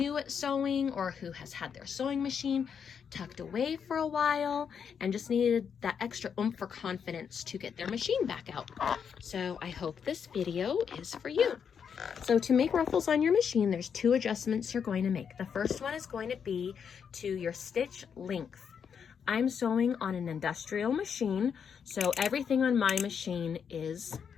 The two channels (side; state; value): right; quieter; 7.1 dB